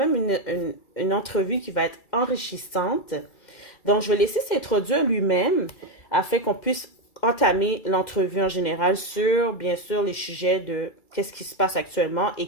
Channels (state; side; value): late; right; 2.1 ms